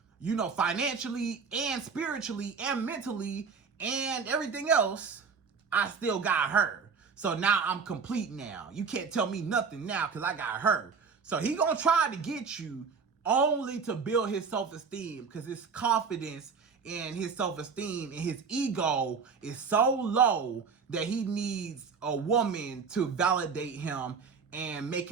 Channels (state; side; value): quieter; left; 5.6 dB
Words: you know, financially and spiritually and mentally and everything else, I still got her. So now I'm complete now. You can't tell me nothing now because I got her. So he gonna try to get you only to build his self-esteem, because his confidence and his self-esteem and his ego is so low that he needs a woman to validate him and make